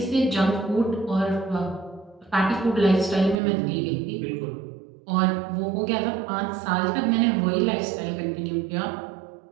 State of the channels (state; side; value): drops out; left; at 3.4 s